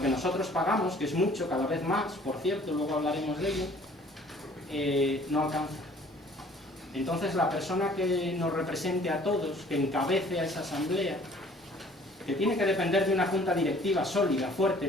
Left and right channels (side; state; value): both; normal; correlation 0.54